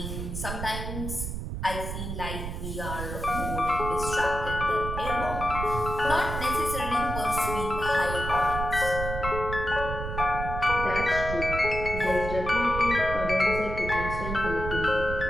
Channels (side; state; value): right; noise; rumble, 5 dB below the sound